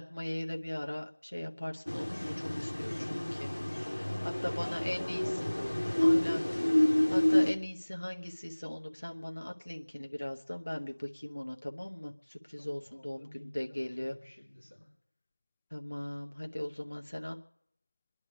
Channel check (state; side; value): inverted; both; correlation -1.00